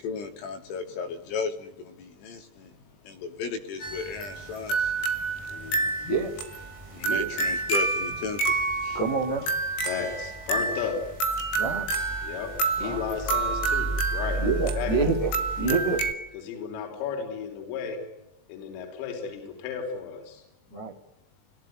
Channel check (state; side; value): late; right; 20 ms